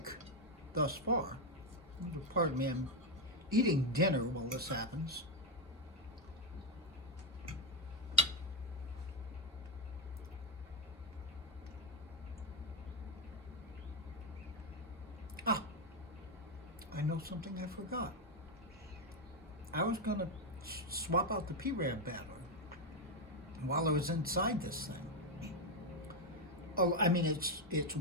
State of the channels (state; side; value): normal; both; correlation 0.04